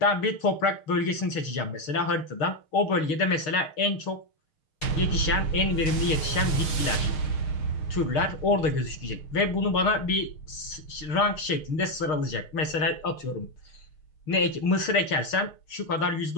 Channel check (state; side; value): late; right; 6.5 ms